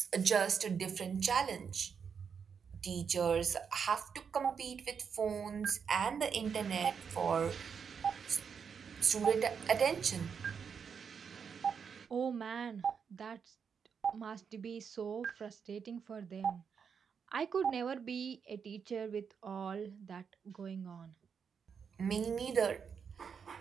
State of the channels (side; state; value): left; quieter; 6.6 dB